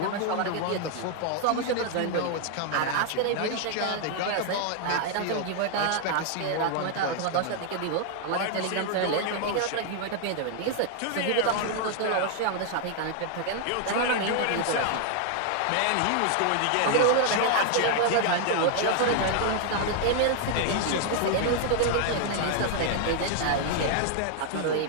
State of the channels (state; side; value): different; both; correlation 0.00